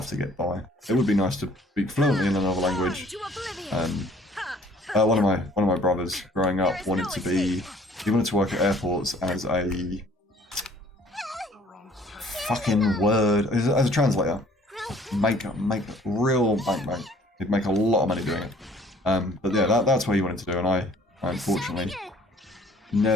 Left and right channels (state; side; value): normal; both; correlation 0.56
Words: to get by. It would be nice to speak fluently in another language. One of my brothers growing up he wanted to work at airports as a fucking word, as a translator. Make real bank. He'd make a lot of money doing it. But yeah, that's what he wanted to do, and I unfortunately